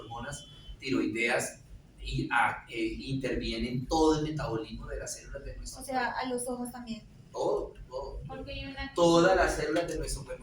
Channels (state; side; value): identical; both; correlation 1.00